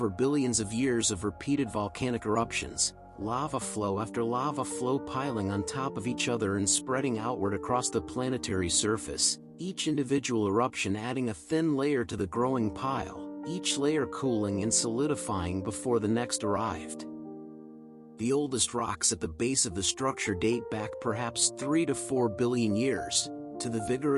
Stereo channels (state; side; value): identical; both; correlation 1.00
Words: billions of years of repeated volcanic eruptions, lava flow after lava flow piling on top of each other and spreading outward across the planetary surface, each individual eruption adding a thin layer to the growing pile, each layer cooling and solidifying before the next arrived. The oldest rocks at the base of the structure date back perhaps 3 to 4 billion years, to the